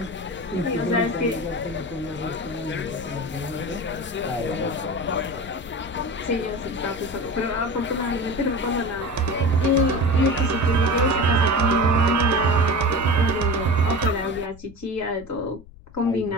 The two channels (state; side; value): noise; left; rumble, 20 dB below the sound